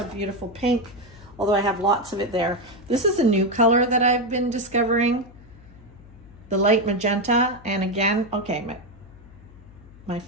beautiful pink, although I have lots of it there. This is a new color that I've been discovering, the light magenta. And again, okay, my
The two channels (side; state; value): left; noise; hum, 22 dB below the sound